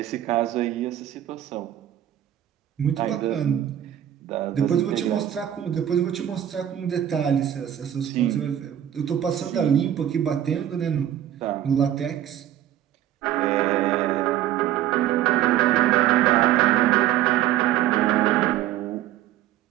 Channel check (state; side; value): quieter; left; 11.6 dB